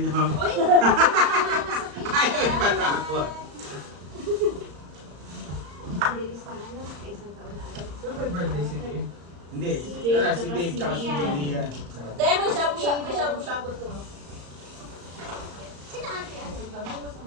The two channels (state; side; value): late; left; 35 ms